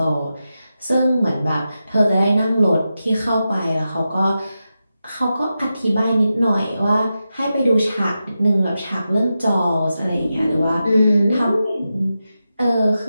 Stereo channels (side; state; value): both; inverted; correlation -0.90